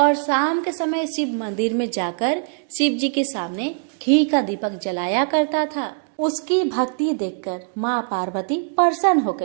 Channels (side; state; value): left; silent; 62 dB below the other